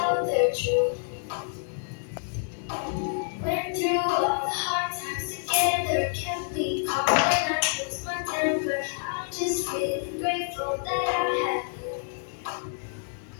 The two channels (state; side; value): silent; right; digital silence